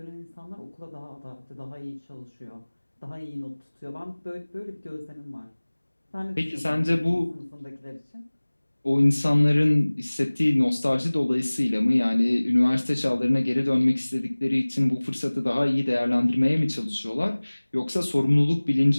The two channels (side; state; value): both; inverted; correlation -1.00